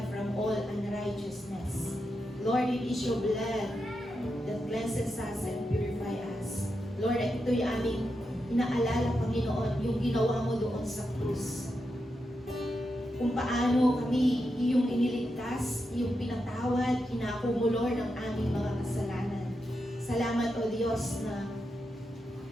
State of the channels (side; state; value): both; normal; correlation 0.86